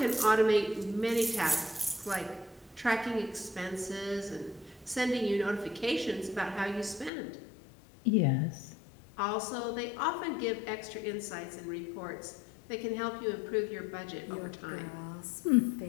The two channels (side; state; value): right; drops out; at 7.1 s